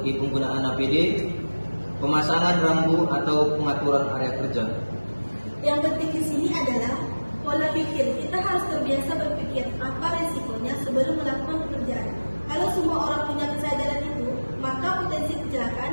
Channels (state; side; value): inverted; both; correlation -1.00